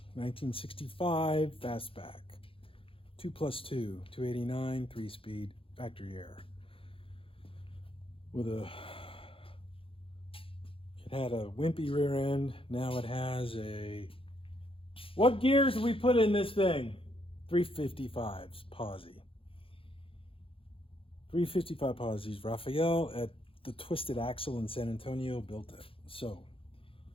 1965 Fastback. 2+2, 289, 3-speed, factory air. It had a wimpy rear end. Now it has a, what gears did we put in this thing? 355s, posi. 355 posies. Raphael at the Twisted Axle in San Antonio built it. So,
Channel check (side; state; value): right; late; 0.26 ms